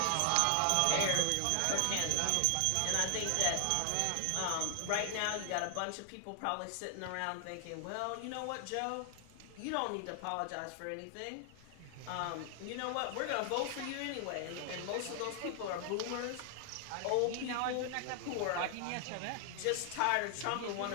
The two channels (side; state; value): both; different; correlation 0.00